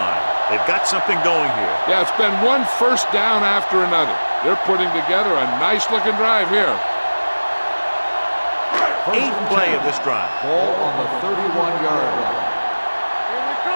They've got something going here. Yeah, it's been one first down after another. They're putting together a nice-looking drive here. 8th play of this drive. Ball on the 31-yard line. Here we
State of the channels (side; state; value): both; inverted; correlation -1.00